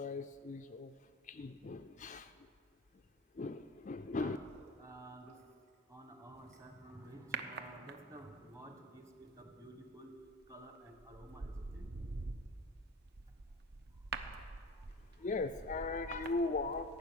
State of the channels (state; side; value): normal; both; correlation 0.34